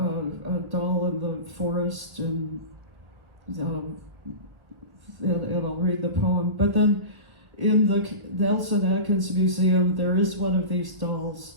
doll in the forest, and I'll read the poem. But then in the Nelson Atkins Museum, there is one of these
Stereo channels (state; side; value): late; left; 1.2 ms